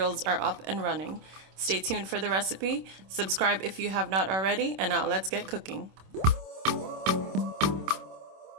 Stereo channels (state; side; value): late; left; 26 ms